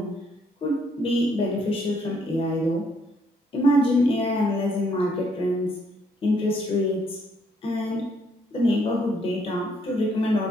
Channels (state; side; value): normal; both; correlation 0.69